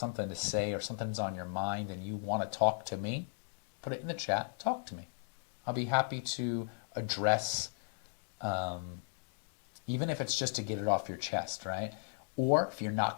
to say or something's on your mind and you want to talk to me, put it in the chat, talk to me. I'll be happy to address, even if it's just to get it off your chest, right? Or if you're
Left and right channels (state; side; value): silent; right; digital silence